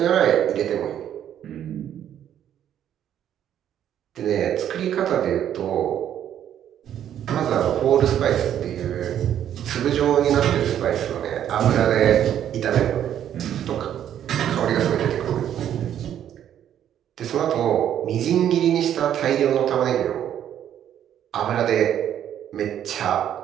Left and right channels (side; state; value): left; quieter; 10.3 dB